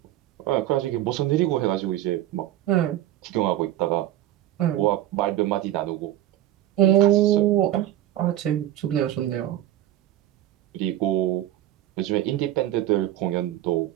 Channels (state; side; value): quieter; left; 13.4 dB